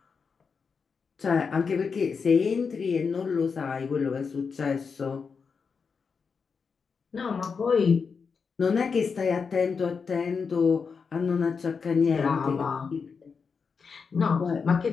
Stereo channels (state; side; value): quieter; right; 5.5 dB